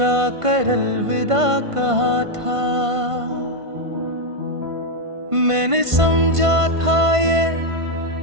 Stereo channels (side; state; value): left; late; 1.5 ms